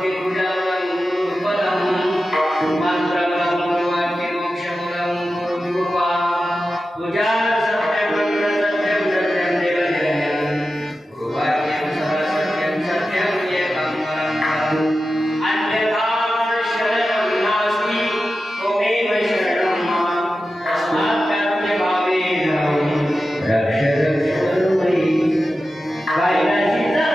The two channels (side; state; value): both; normal; correlation 0.92